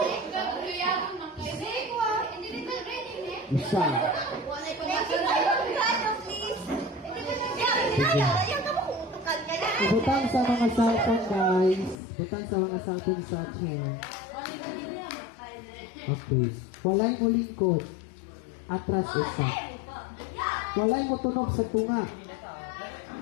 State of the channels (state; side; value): drops out; right; at 12.0 s